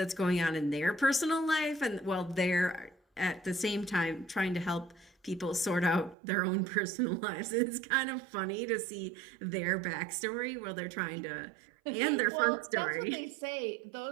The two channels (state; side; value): drops out; left; at 6.2 s